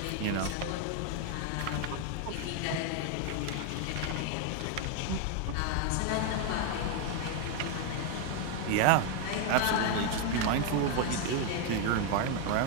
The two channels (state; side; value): different; both; correlation 0.01